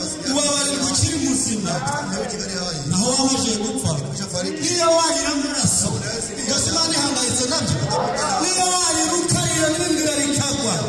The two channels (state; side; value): identical; both; correlation 1.00